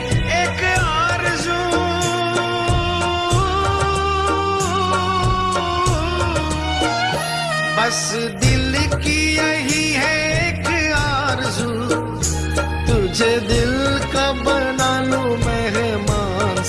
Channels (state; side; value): identical; both; correlation 1.00